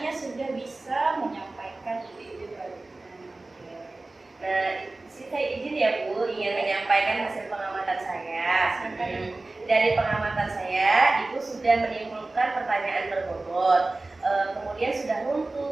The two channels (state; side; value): quieter; left; 3.1 dB